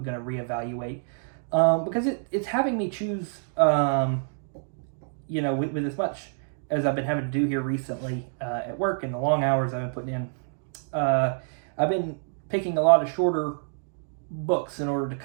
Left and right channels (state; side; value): silent; left; digital silence